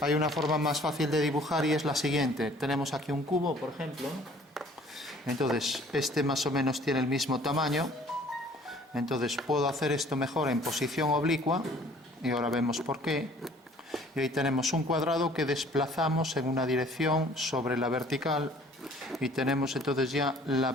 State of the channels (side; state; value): both; normal; correlation 0.54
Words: una forma más fácil de dibujar y es la siguiente. Tenemos aquí un cubo, por ejemplo. Entonces, este más o menos tiene el mismo tamaño. Entonces, puedo hacer esto mejor en posición oblicua, y ahora vemos por qué. Y ahí tenemos un cuadrado que desplazamos en una dirección sobre la vertical y tenemos entonces ya la